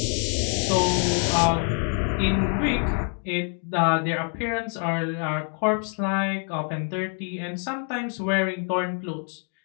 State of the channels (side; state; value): right; quieter; 39.2 dB